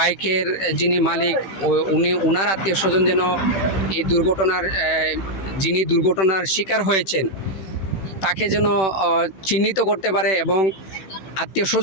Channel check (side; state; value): right; late; 16 ms